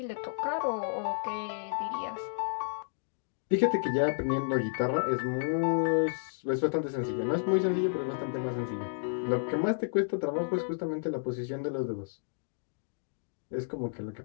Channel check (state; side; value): silent; right; digital silence